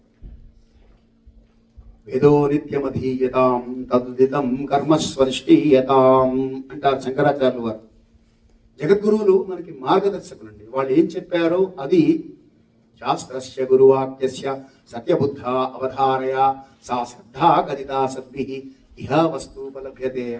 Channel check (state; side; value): identical; both; correlation 1.00